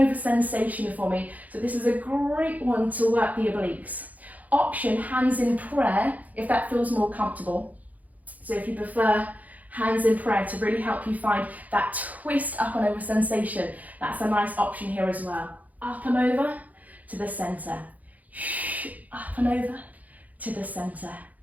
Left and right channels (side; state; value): left; late; 0.078 ms